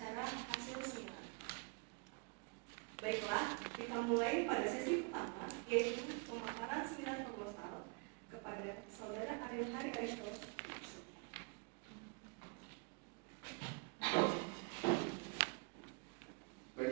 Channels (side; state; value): left; quieter; 33.9 dB